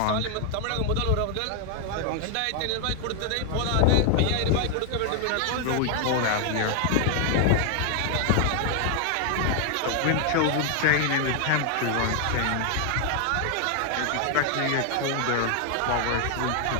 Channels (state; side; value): different; both; correlation 0.00